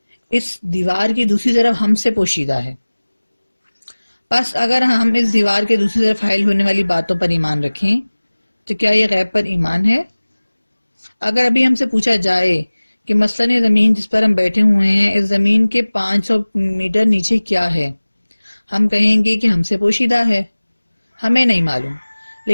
اس دیوار کی دوسری طرف ہم سے پوشیدہ ہے۔ بس اگر ہم اس دیوار کے دوسری طرف حائل ہونے والی باتوں پر ایمان رکھیں تو کیا یہ غیب پر ایمان ہے؟ اگر ابھی ہم سے پوچھا جائے کہ مثلاً یہ زمین جس پر ہم بیٹھے ہوئے ہیں، اس زمین کے 500 میٹر نیچے کیا ہے، ہم کہیں گے کہ ہم سے پوشیدہ ہے، ہمیں نہیں معلوم۔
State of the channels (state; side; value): inverted; both; correlation -1.00